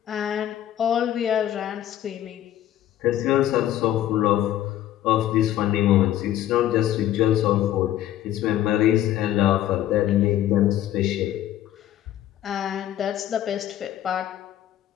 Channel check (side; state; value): right; quieter; 12.4 dB